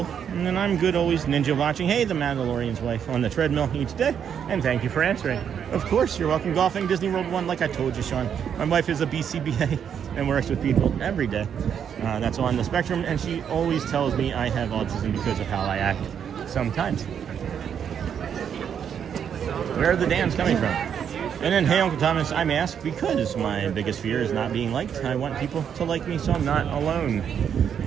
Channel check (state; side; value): quieter; left; 8.1 dB